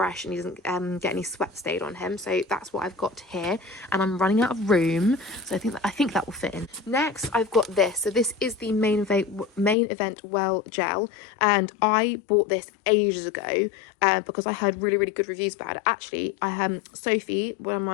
and he doesn't get any sweat stayed on him. So that's what I've got here, and I'm running out of room, so I think that will fit in. Next, I've got this. So this is the Main Event Well Gel, and I bought this ages ago because I heard really, really good reviews about it. Actually, Sophie, one of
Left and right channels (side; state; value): right; drops out; at 9.8 s